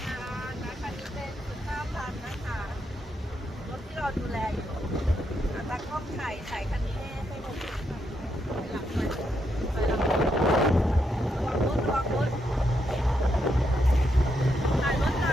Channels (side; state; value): both; normal; correlation 0.80